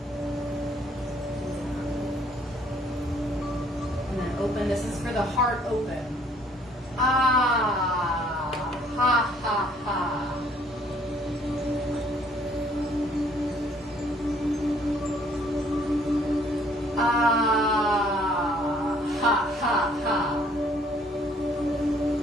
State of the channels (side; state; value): both; normal; correlation 0.61